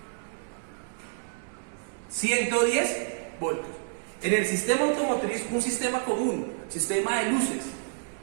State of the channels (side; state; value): left; silent; digital silence